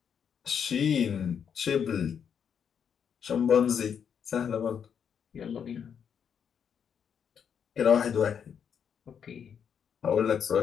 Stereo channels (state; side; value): quieter; right; 7.6 dB